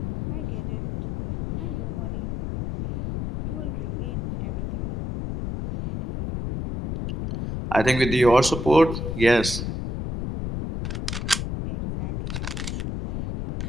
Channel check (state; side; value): noise; left; rumble, 4 dB below the sound